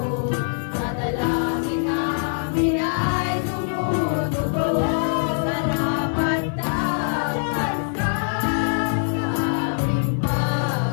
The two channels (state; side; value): silent; right; 63 dB below the other